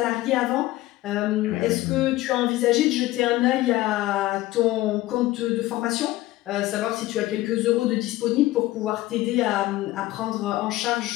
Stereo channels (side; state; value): right; quieter; 17.0 dB